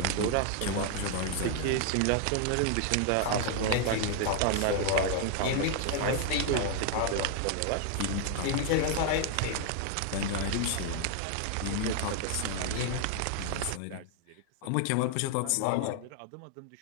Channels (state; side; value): different; both; correlation 0.00